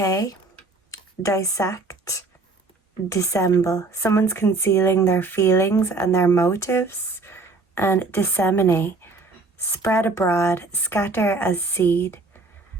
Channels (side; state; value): left; quieter; 3.6 dB